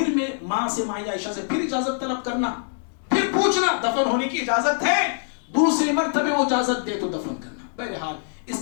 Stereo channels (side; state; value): right; silent; digital silence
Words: میں ماں سے، ماں عائشہ سے پھر اجازت طلب کرنا، پھر پوچھنا دفن ہونے کی اجازت ہے، دوسری مرتبہ وہ اجازت دے تو دفن کرنا. بہرحال